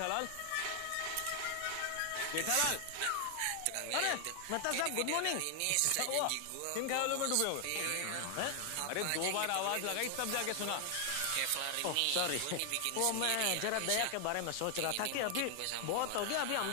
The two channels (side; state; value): both; different; correlation 0.00